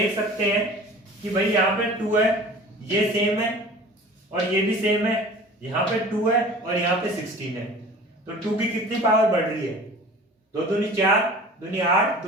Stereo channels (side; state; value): both; normal; correlation 0.42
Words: सकते हैं कि भाई यहाँ पे 2 है, ये सेम है और ये भी सेम है, यहाँ पे 2 है और यहाँ पे 16 है। तो 2 की कितनी पावर बढ़ रही है, 2 दूनी 4, दूनी 8,